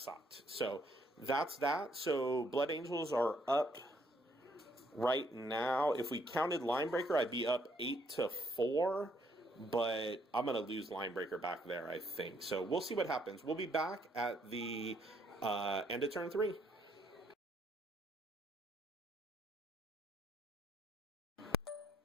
So that's that. So Blood Angels are up right now. If we counted Linebreaker, I'd be up 8-4. But I'm going to lose Linebreaker back there, I think. So we'll see what happens. We'll be back at the end of turn 3.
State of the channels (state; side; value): normal; both; correlation 0.69